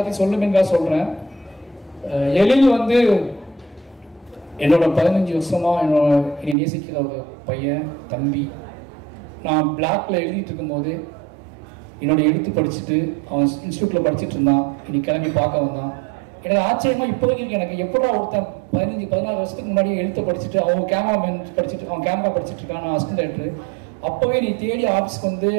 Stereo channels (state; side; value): drops out; left; at 6.6 s